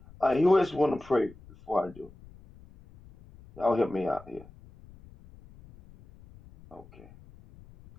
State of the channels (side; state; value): left; noise; rumble, 23 dB below the sound